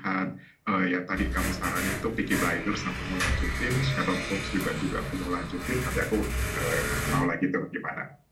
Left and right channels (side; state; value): both; identical; correlation 1.00